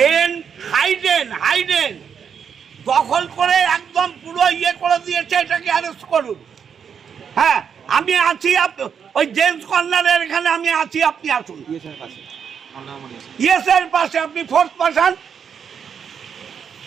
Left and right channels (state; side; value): quieter; left; 7.2 dB